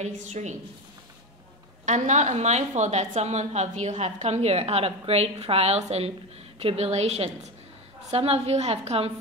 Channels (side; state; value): both; normal; correlation 0.20